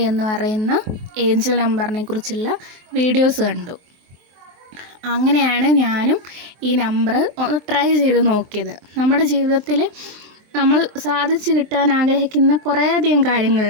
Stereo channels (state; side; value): late; left; 23 ms